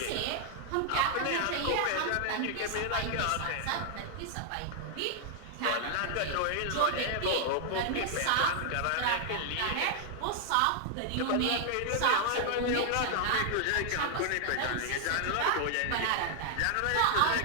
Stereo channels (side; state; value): both; different; correlation 0.00